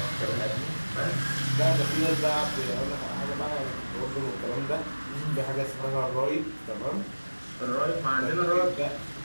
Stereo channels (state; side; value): inverted; both; correlation -1.00